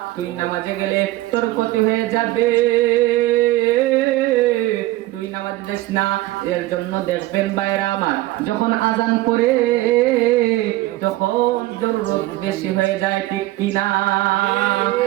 তুই নামাজে গেলে তোর ক্ষতি হয়ে যাবে, তুই নামাজে যাস না। এর জন্য দেখবেন ভাইরা আমার, যখন আজান করে তখন জরুরত বেশি হয়ে যায়, ঠিক কিনা?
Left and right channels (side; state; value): left; quieter; 17.5 dB